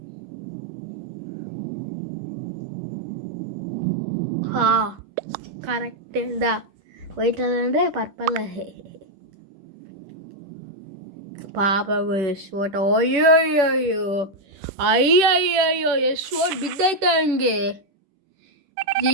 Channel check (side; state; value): left; late; 10 ms